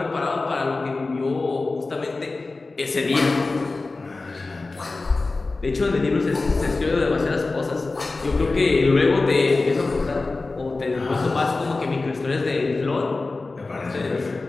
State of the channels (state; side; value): quieter; right; 3.5 dB